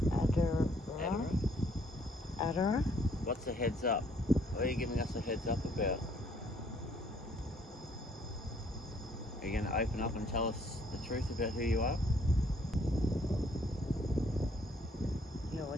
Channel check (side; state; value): both; normal; correlation 0.64